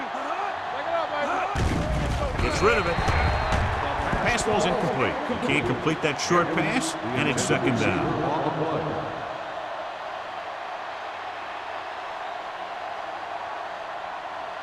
Take it up, baby. Gets rid of it. Pass ball's incomplete. He can't complete that short pass, and it's second down. On the play.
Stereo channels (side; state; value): both; identical; correlation 1.00